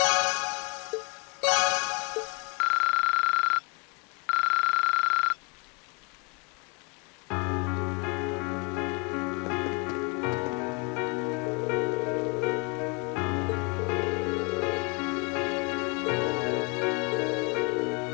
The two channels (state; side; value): quieter; right; 33.2 dB